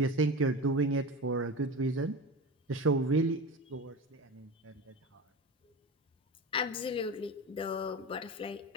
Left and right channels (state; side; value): normal; both; correlation 0.27